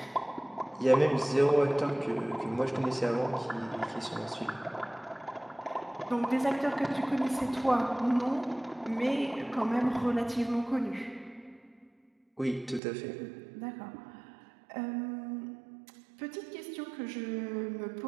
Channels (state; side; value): drops out; left; at 12.8 s